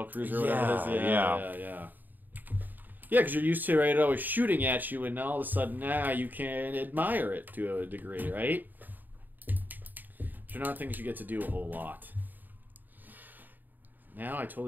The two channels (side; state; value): left; late; 0.088 ms